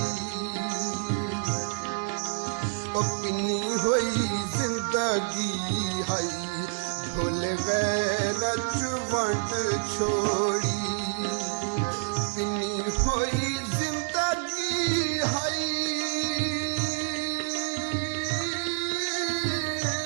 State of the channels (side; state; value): left; silent; digital silence